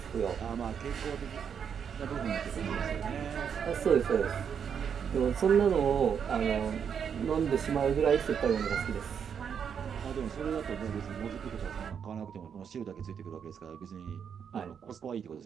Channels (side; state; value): left; quieter; 7.4 dB